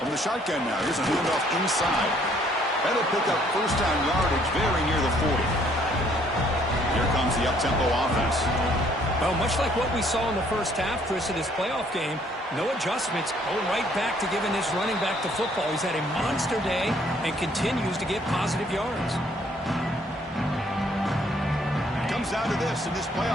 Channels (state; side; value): normal; both; correlation 0.64